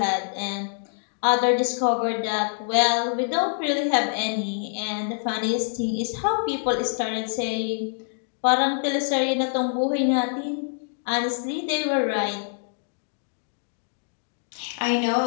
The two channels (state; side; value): silent; right; digital silence